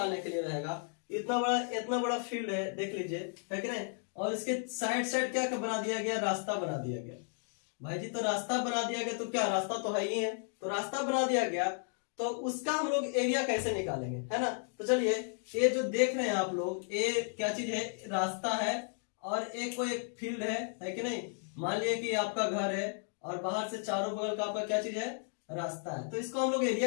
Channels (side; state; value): right; silent; 55 dB below the other